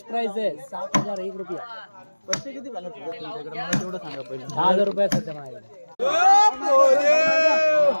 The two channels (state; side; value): inverted; both; correlation -1.00